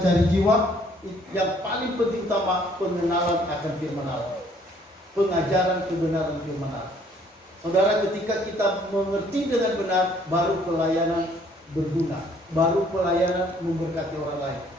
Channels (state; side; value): normal; both; correlation 0.62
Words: jiwa. Yang paling penting utama pengenalan akan firman Allah, pengajaran kebenaran firman Allah. Saudara, ketika kita mengerti dengan benar, baru pelayanan berguna, baru pelayanan memberkati orang lain.